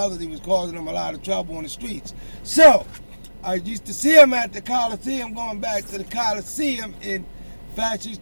he was causing them a lot of trouble on the streets. So, I used to see him at the Coliseum, going back to the Coliseum, and Fats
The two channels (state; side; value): inverted; both; correlation -1.00